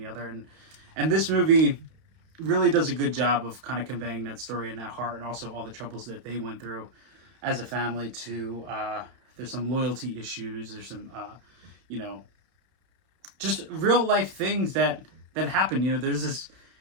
other. And this movie really does a good job of kind of conveying that story and that heart, and also all the troubles that they went through as a family. There's some loyalty issues. There's some just real life things that happen. There's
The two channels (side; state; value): left; late; 31 ms